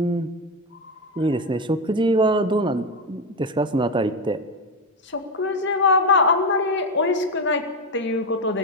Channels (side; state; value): both; normal; correlation 0.12